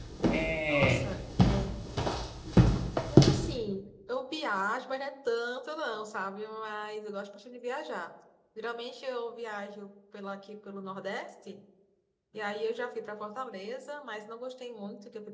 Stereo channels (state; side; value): identical; both; correlation 1.00